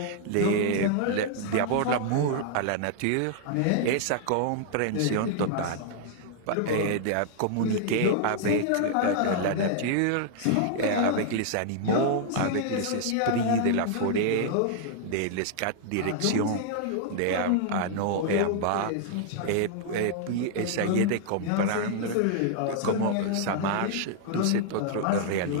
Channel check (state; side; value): different; both; correlation -0.01